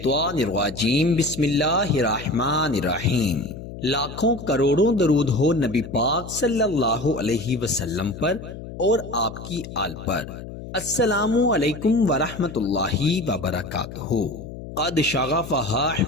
الرجیم بسم اللہ الرحمن الرحیم۔ لاکھوں کروڑوں درود ہو نبی پاک صلی اللہ علیہ وسلم پر اور آپ کی آل پر۔ السلام علیکم ورحمۃ اللہ وبرکاتہ۔ قد شغفہا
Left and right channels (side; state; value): left; noise; hum, 12 dB below the sound